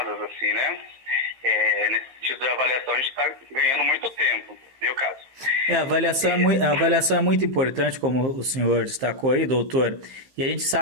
assim, né? Nesse sentido de avaliação, a gente está ganhando muito tempo, viu, caso? A avaliação é muito importante, como o senhor destacou aí, doutor. E a gente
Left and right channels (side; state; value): left; late; 15 ms